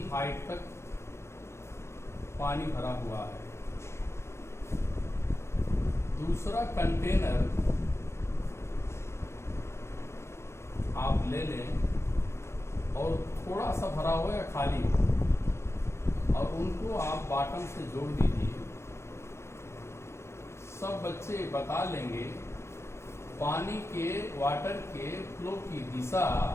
हाइट तक पानी भरा हुआ है, दूसरा कंटेनर आप ले लें और थोड़ा सा भरा हो या खाली हो और उनको आप बॉटम से जोड़ दीजिए। सब बच्चे बता लेंगे पानी के वाटर के फ्लो की दिशा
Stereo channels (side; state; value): right; late; 0.13 ms